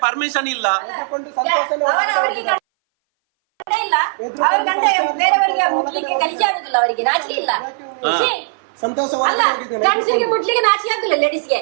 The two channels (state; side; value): silent; left; 60 dB below the other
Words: ಪರ್ಮಿಷನ್ ಇಲ್ಲ. ಸಂತೋಷ